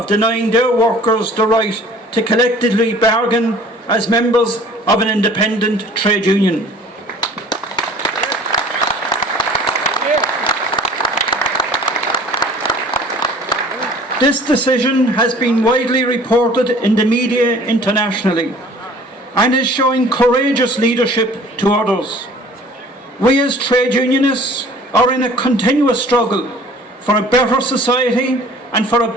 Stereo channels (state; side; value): normal; both; correlation 0.49